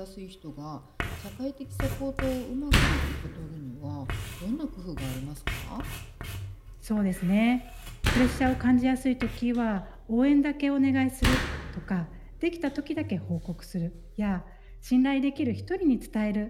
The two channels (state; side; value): identical; both; correlation 1.00